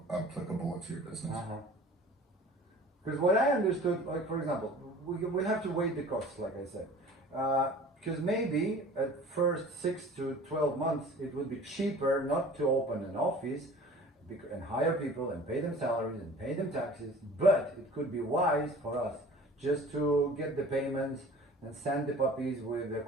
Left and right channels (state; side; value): normal; both; correlation 0.45